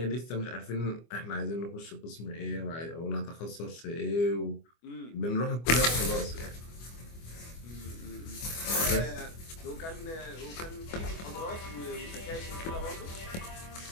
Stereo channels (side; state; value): right; late; 24 ms